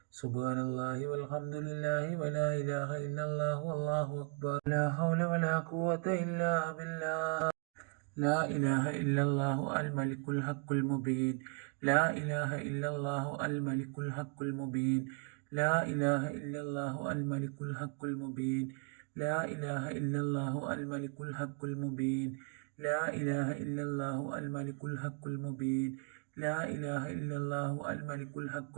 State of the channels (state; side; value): quieter; left; 35.9 dB